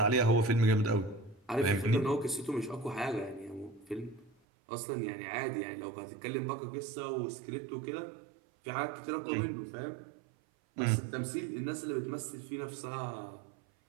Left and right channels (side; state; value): left; drops out; at 4.3 s